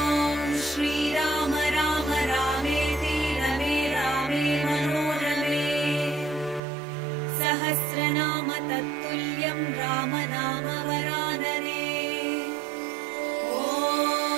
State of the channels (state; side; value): drops out; left; at 6.6 s